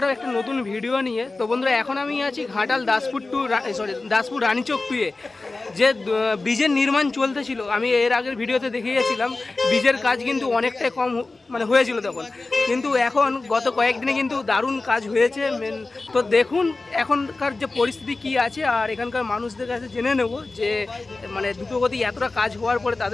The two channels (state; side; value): quieter; right; 3.4 dB